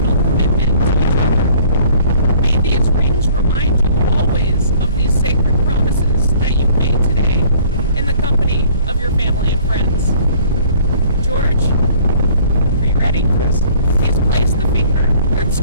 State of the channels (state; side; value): inverted; both; correlation -0.55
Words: commitment to each other. May these rings remind you always of these sacred promises that you've made today in the company of your family and friends. George, are you ready? Yes. Please place the